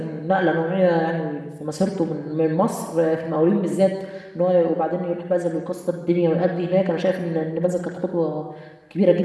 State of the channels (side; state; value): both; identical; correlation 1.00